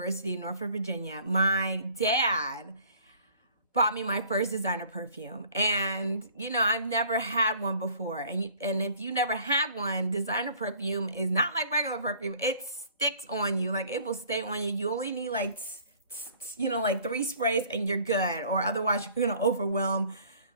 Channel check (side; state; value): both; inverted; correlation -0.53